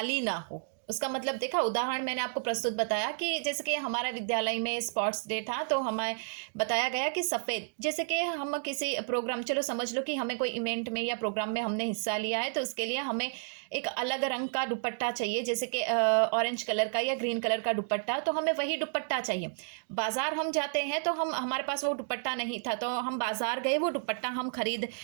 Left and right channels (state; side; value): silent; left; digital silence